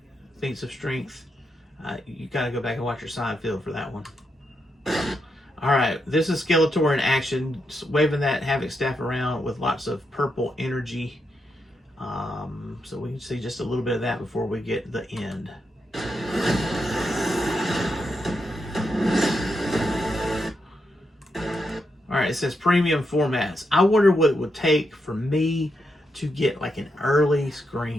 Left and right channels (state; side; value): normal; both; correlation 0.83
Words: Feats of strength. You got to go back and watch your Seinfeld for that one. All right, this is Skeletor in action, waving that Havoc staff around with lots of purple energy. So we can see just a little bit of that before we get the end. All right, it says premium formats. I wonder what it would take for me to get like an early